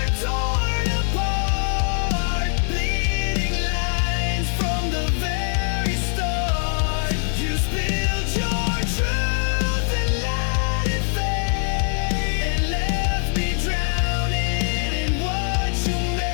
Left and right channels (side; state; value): right; silent; 57 dB below the other